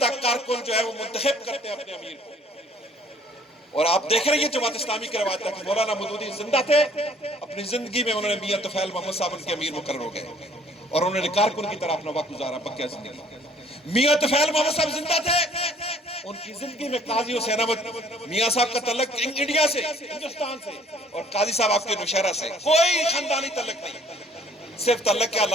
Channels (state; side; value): normal; both; correlation 0.57